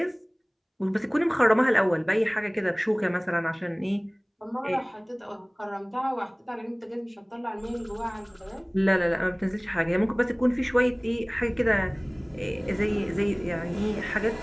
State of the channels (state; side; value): identical; both; correlation 1.00